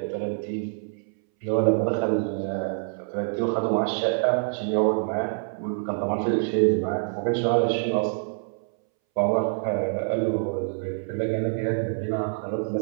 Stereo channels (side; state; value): left; silent; 61 dB below the other